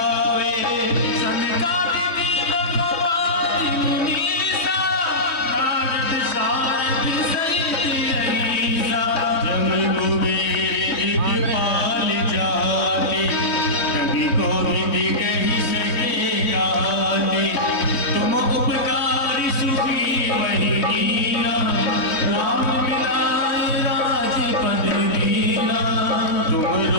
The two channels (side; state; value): right; late; 3.1 ms